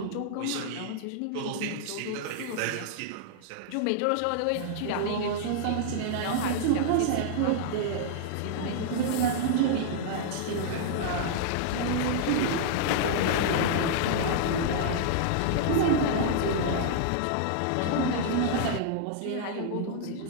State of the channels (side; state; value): both; different; correlation -0.01